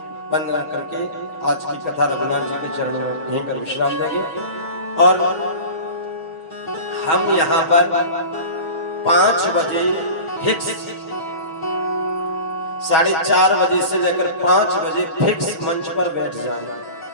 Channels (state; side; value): late; right; 6.2 ms